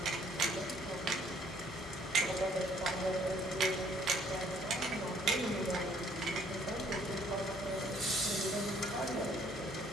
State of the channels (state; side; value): normal; both; correlation 0.62